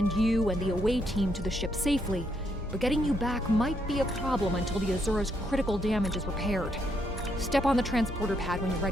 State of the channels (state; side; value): normal; both; correlation 0.75